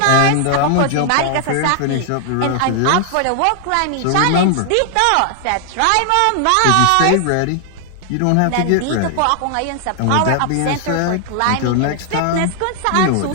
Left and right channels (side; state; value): both; different; correlation 0.00